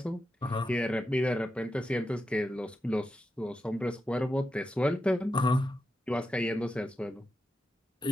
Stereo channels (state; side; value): normal; both; correlation 0.88